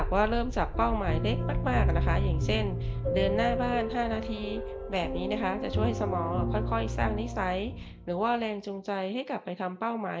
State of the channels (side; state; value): both; identical; correlation 1.00